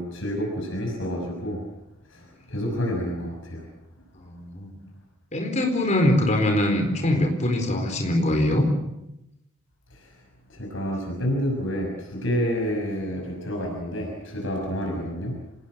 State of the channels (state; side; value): normal; both; correlation 0.63